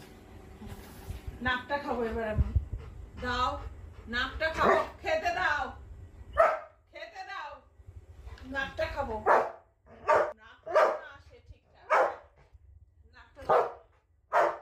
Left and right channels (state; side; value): identical; both; correlation 1.00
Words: নাকটা খাবো এবার আমি। দাও নাকটা খাবো, খেতে দাও, খেতে দাও, নাকটা খাবো। নাকটা না আসে ঠিকঠাক, নাকটা দাও।